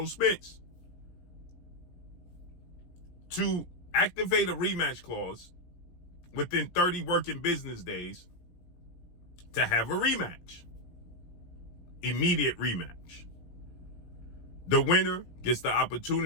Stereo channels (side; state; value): right; late; 17 ms